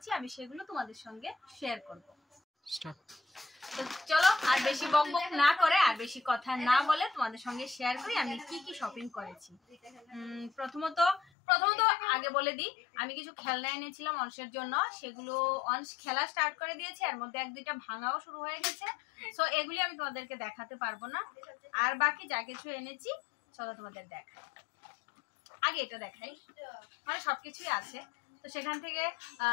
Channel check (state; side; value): drops out; right; at 11.2 s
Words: আমি সেগুলো তোমাদের সঙ্গে শেয়ার করব। তো চলো, আর বেশি বকবক না করে আর বেশি কথা না বলে তোমাদের সঙ্গে শেয়ার করি আমি কি শপিং করেছি। প্রথমত আগে বলে দিই, আমি কিছু খেলনা এনেছিলাম অংশের জন্য, সেগুলো অংশ খেলা স্টার্ট করে দিয়েছে, এর মধ্যে এক দুইটা ভাঙাও শুরু হয়ে গেছে। সো এগুলি আমি তোমাদেরকে দেখাতে পারবো না, আর বাকি যা কিছু এনেছি চলো তোমাদের দেখাই। আগে এটা দেখাই, মানে সবকিছুই আছে। তো সেখান থেকে